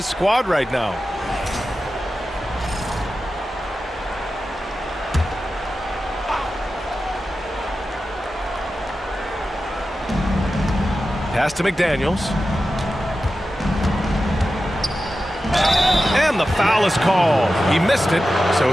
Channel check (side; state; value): both; normal; correlation 0.93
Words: squad right now. Pass to McDaniels. And the foul is called. He missed it, so